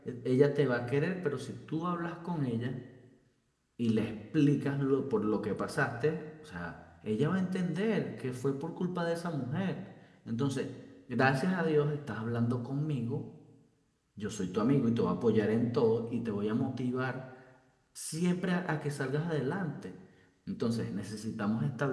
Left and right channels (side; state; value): both; identical; correlation 1.00